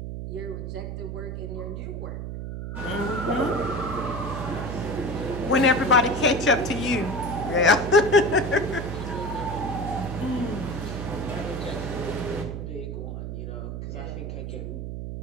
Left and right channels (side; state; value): right; noise; hum, 6 dB below the sound